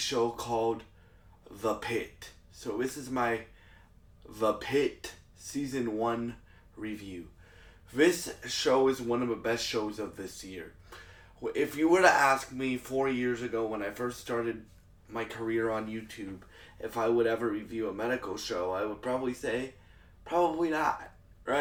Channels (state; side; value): identical; both; correlation 1.00